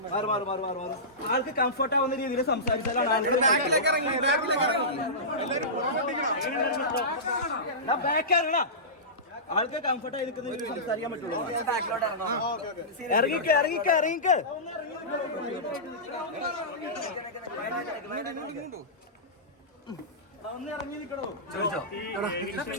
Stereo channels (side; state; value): both; normal; correlation -0.19